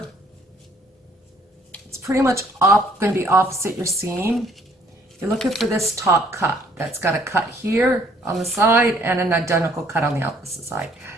it's pretty much going to be opposite your seam. You're looking for this top cut that's got a cut here on the side and an identical cut on the opposite side.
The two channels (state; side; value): normal; both; correlation 0.61